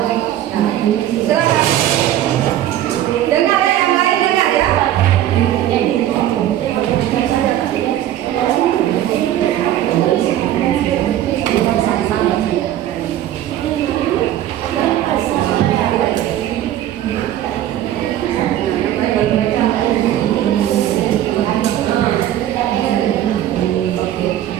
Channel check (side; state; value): left; quieter; 12.4 dB